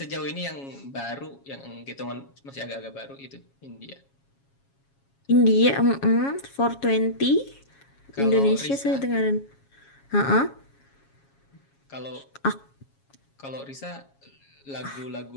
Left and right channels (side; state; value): right; late; 7.3 ms